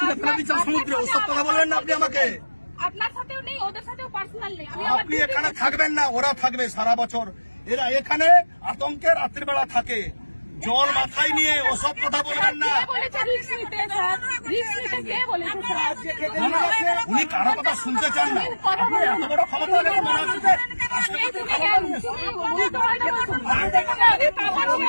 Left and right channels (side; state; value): both; inverted; correlation -1.00